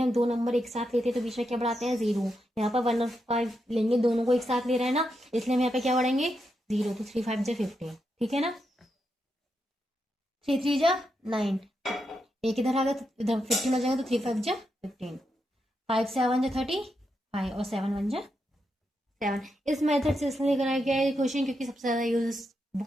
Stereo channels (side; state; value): both; normal; correlation 0.84